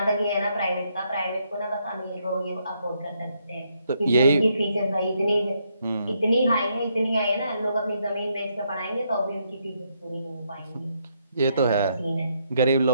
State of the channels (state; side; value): inverted; both; correlation -0.75